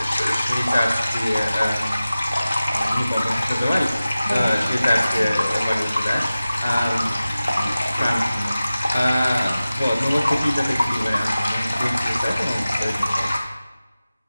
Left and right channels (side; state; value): both; inverted; correlation -0.96